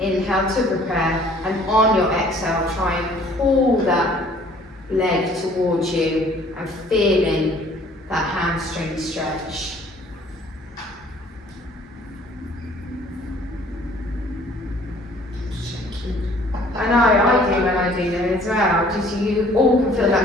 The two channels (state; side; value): normal; both; correlation 0.56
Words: to prepare, and on your exhale, try and pull that leg towards you and feeling that hamstring stretch. I know, I do when I do them as well. Just you all can feel